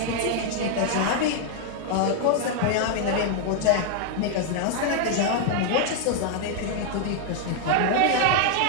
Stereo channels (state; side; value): different; both; correlation 0.00